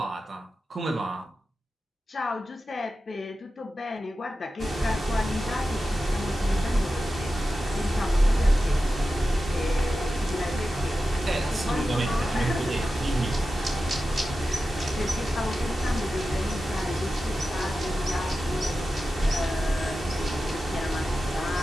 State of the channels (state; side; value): normal; both; correlation 0.93